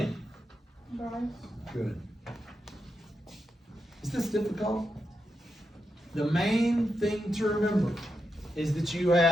Bryce. Good. Is this difficult? the main thing to remember is that you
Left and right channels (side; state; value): both; normal; correlation 0.86